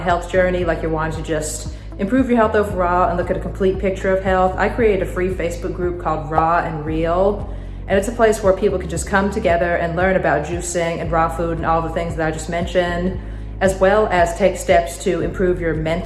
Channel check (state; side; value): identical; both; correlation 1.00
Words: journey, like you're wanting to just improve your health overall and look at a complete picture of health, I created a free Facebook group called Raw and Real. And it's a place where people can just come together and learn about juicing and raw food and all the things that I just mentioned, as well as take steps to improve your